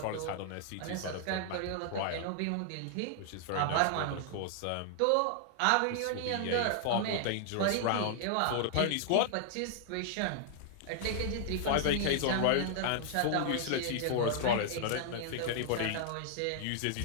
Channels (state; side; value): different; both; correlation -0.01